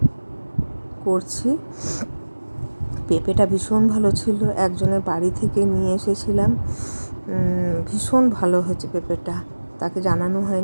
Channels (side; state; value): both; inverted; correlation -1.00